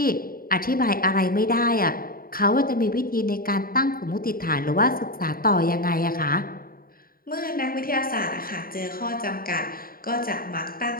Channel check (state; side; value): late; right; 0.42 ms